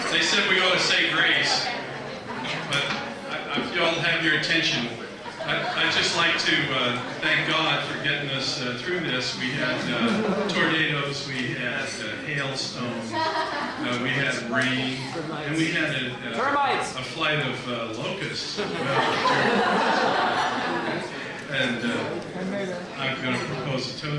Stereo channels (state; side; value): identical; both; correlation 1.00